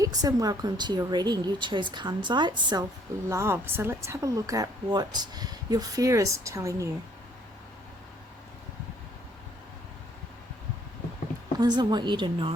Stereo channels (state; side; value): normal; both; correlation 0.63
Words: and welcome to your reading. You chose Kunzite, self-love. So let's have a look at what your fear is telling you. What does it want you to